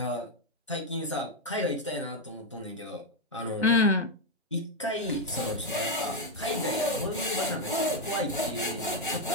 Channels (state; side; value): normal; both; correlation 0.03